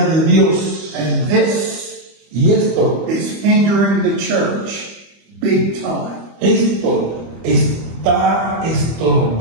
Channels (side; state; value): left; late; 25 ms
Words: de Dios. And this Y esto is hindering the church big time. Esto está